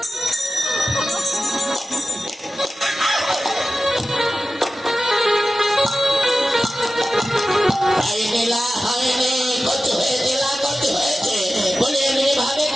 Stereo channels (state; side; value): normal; both; correlation 0.94